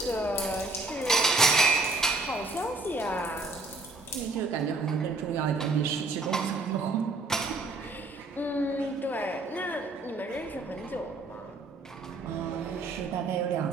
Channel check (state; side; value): quieter; left; 3.3 dB